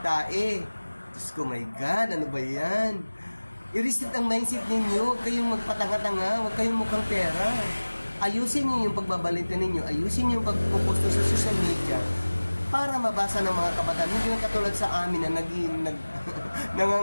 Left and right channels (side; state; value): both; inverted; correlation -1.00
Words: Diyos ko, my God, ano ba yan? I-reset ang mindset ninyo, huwag kayong magpatanga-tanga, huwag kayong mukhang pera. Ayusin nyo yung pagbabalita ninyo, ayusin nyo yung pagpuposto sa social media para mabasa ng mga kabataan. Hindi lang katulad sa amin na